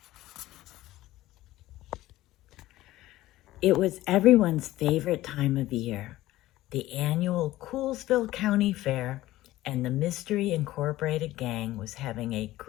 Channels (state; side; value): quieter; right; 16.2 dB